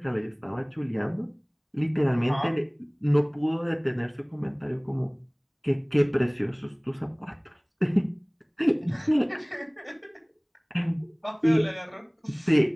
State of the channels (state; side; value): identical; both; correlation 1.00